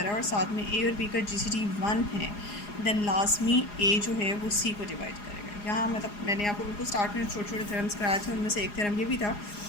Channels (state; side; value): late; right; 4.9 ms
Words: रहा है और साथ में ए और बी का जीसीडी 1 है, देन लाजमी ए जो है वो सी को डिवाइड करेगा। यहाँ मतलब मैंने आपको बिल्कुल स्टार्ट में छोटे छोटे थ्योरम्स कराए थे, उनमें से एक थ्योरम ये भी था।